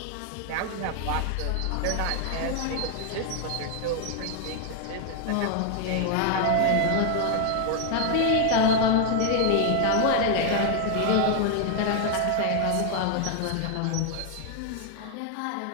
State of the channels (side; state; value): both; different; correlation 0.00